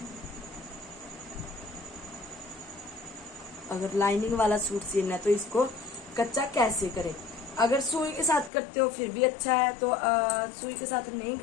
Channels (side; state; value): right; drops out; at 8.5 s